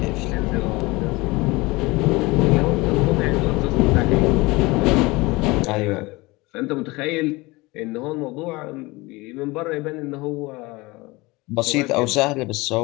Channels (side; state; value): right; quieter; 22.8 dB